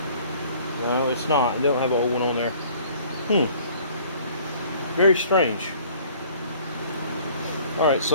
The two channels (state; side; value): inverted; both; correlation -0.54